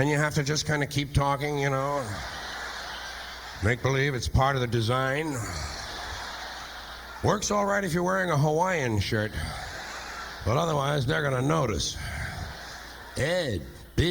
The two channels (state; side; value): identical; both; correlation 1.00